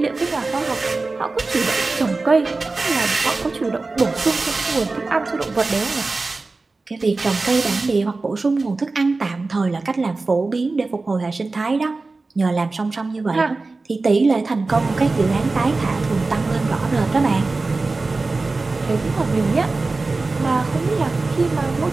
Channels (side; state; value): left; quieter; 3.6 dB